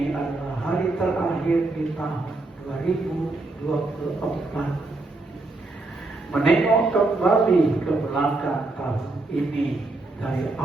adalah hari terakhir di tahun 2024. Menengok kembali ke belakang tahun ini, dari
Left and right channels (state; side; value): quieter; left; 3.2 dB